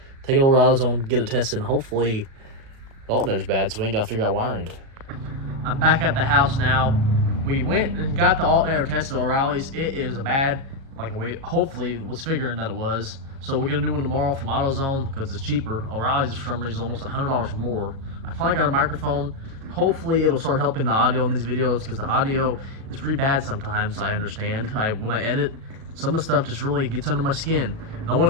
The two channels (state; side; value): late; left; 37 ms